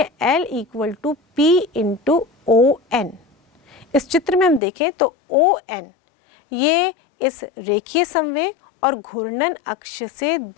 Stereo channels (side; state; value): right; drops out; at 4.6 s